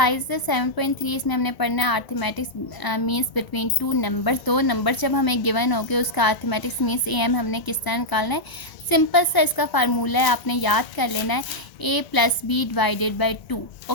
7.3 इसमें हमने पढ़ना है arithmetics means between two numbers. दो नंबर जब हमें गिवन हो गए उसका अर्थमेटिक्स मीन्स एम हमने किस तरह निकालना है। सिंपल सा इसका फार्मूला है, आपने याद कर लेना है a plus b divided by 2।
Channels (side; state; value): right; late; 1.0 ms